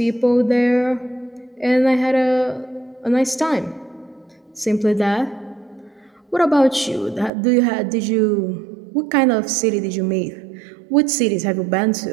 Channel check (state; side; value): drops out; left; at 7.3 s